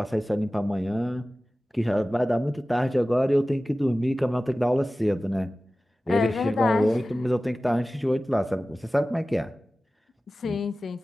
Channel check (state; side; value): normal; both; correlation 0.96